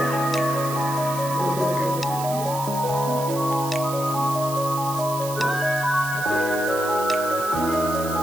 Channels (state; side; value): noise; right; hiss, 10 dB below the sound